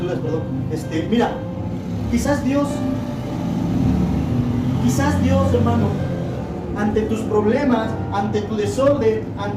perdón. Mira, quizás Dios, hermano, ante tus problemas, ante tu desorden,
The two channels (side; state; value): both; identical; correlation 1.00